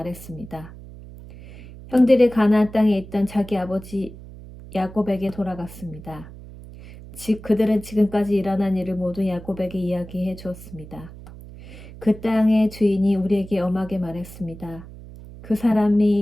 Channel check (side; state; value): right; noise; hum, 16 dB below the sound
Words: 형들이 가나안 땅에 있던 자기 아버지 야곱에게 돌아갔습니다. 그들은 지금까지 일어난 일을 모두 야곱에게 이야기해 주었습니다. 그 땅의 주인이 우리에게 엄하게 말했습니다. 그